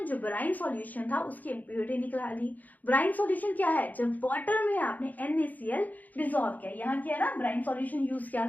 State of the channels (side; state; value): right; late; 0.081 ms